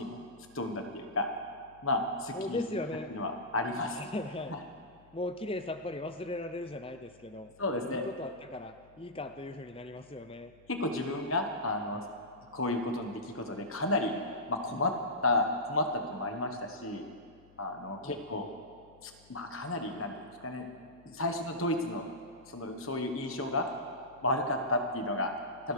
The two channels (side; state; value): left; noise; hum, 26 dB below the sound